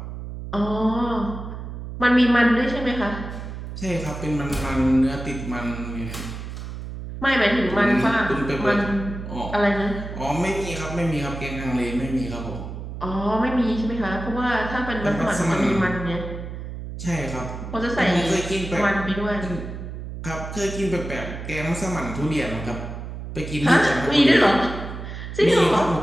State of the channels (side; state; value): right; noise; hum, 9 dB below the sound